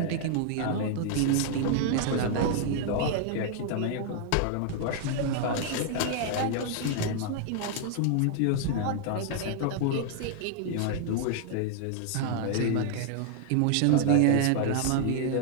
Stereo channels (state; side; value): different; both; correlation 0.00